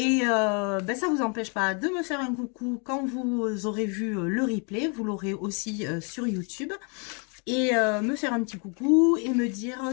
ça vous empêche pas de me faire un coucou quand vous aurez vu le replay, vous l'aurez aussi sur YouTube et me faire un petit coucou et me dire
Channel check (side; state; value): right; quieter; 36.0 dB